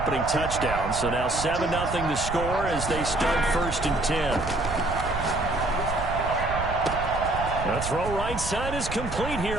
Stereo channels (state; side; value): noise; right; rumble, 7 dB below the sound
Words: touchdown. So now 7-0 the score as they start 1st and 10. The throw right side is complete here